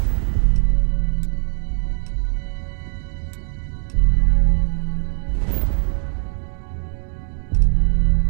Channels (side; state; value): left; silent; digital silence